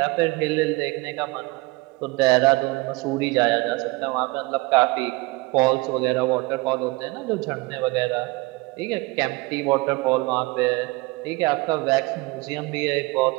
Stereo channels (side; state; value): left; quieter; 23.6 dB